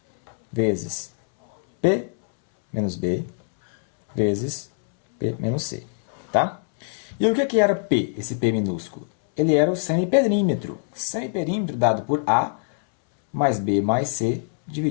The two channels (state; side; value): silent; right; 63 dB below the other